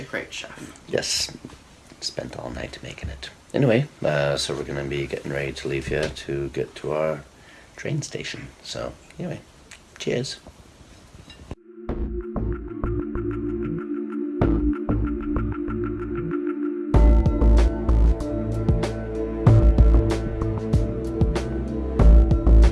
great chef. Yes. Spent all night making it. Anyway, so we're going to be getting ready to leave here to get to our train station. So, anyway, cheers.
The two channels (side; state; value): both; identical; correlation 1.00